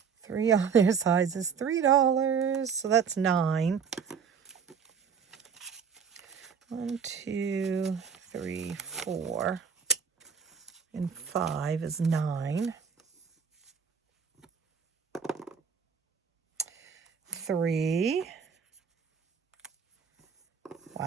3 on their sides is $3. So that's 9. 1, 2, 3, 4. And 5 is 9. 3.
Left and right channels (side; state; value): left; quieter; 6.6 dB